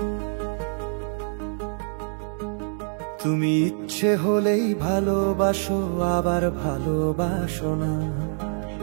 ইচ্ছে হলেই ভালোবাসো আবার ভালোবাসো না,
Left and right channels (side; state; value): left; silent; digital silence